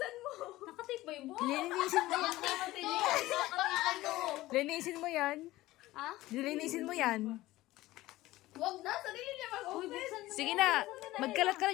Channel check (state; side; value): quieter; right; 17.4 dB